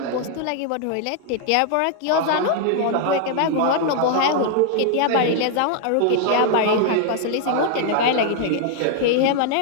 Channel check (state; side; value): different; both; correlation 0.00